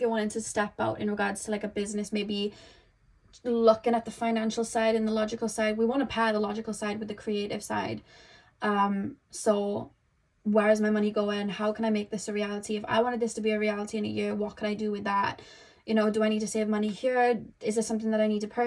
wanting to step out in regards to like a business, maybe looking at the financial side and the logical side, we want to pair the logical side with the creative side. So where is my money going? How can I make this a reality? If I wanted this to be a reality in a year, what can I do with that? You know, do I need to save money here? Is there something that I need to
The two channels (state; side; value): identical; both; correlation 1.00